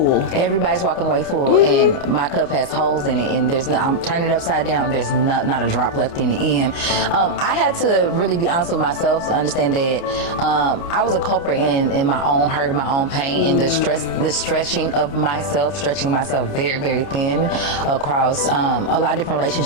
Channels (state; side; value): late; right; 29 ms